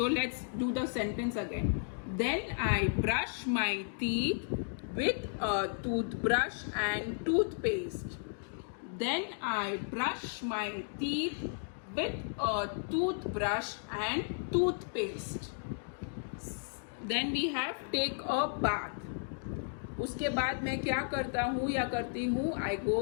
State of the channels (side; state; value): right; silent; digital silence